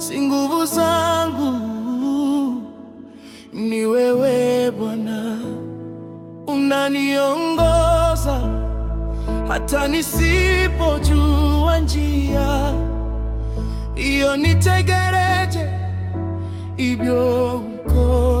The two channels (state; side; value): identical; both; correlation 1.00